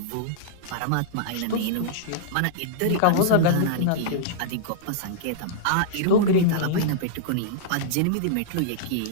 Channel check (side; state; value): both; different; correlation -0.02